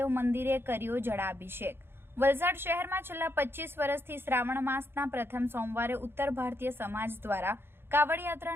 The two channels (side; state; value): left; late; 0.11 ms